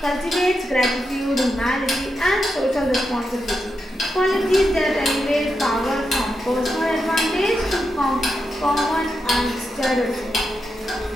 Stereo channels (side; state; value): both; normal; correlation 0.86